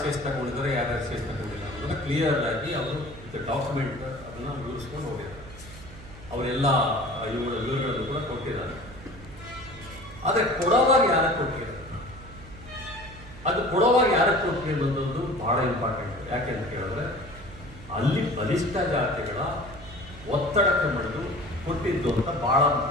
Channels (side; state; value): right; noise; hum, 17 dB below the sound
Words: ತಗೊಂಡಿದ್ದಾರೆ, ಯಾರು ಎಸ್ ತಗೊಂಡಿಲ್ಲ ಅನ್ನೋದನ್ನ ಕ್ಲಿಯರ್ ಆಗಿ ಅವರು ಡಾಕ್ಯುಮೆಂಟ್ ಅದನ್ನು ವಿವರಿಸ್ಕೊಂಡು ಹೋಗಿದ್ದಾರೆ. ಅವರೆಲ್ಲ ವಿವರಗಳನ್ನು ಕೂಡ ಕೊಟ್ಟಿದ್ದಾರೆ. ಆದರೆ ಕೊಡೋವಾಗ ಯಾರಕ್ಕೆ ಕೊಟ್ಟಿದ್ದಾರೆ, ಅದು ಕೊಡೋವಾಗ ಯಾರಕ್ಕೆ ಕೊಟ್ಟಿದೆ ಅನ್ನೋದು ಬಹಳ ಇಂಪಾರ್ಟೆಂಟ್. ಯಾಕೆ ಅಂತ ಕೇಳಿದ್ರೆ ಅಲ್ಲಿ ಬಲಿಷ್ಠ ಜಾತಿಗಳ ಒತ್ತಡಕ್ಕೆ ಮಣಿದು ಕೊಟ್ಟಿದ್ದು ಅಂತ ಬಹಳ